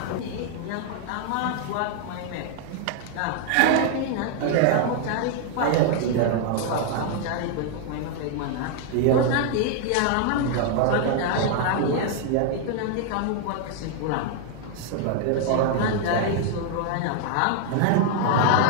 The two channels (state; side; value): different; both; correlation 0.00